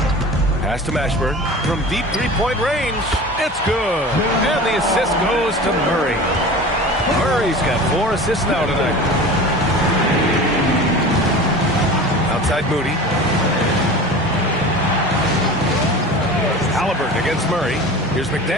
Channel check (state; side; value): normal; both; correlation 0.36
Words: Pass to Mashburn from deep three-point range. It's good. And the assist goes to Murray. Murray's got 4 assists now tonight. Outside Moody. Halliburton against Murray. Here's